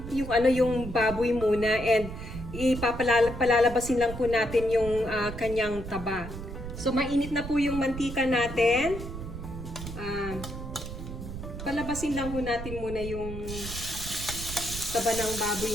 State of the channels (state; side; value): noise; right; rumble, 9 dB below the sound